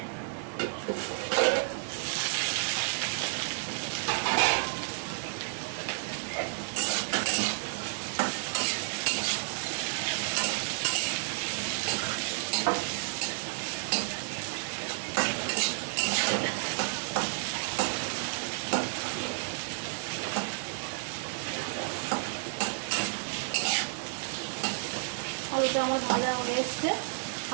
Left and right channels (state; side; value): silent; left; digital silence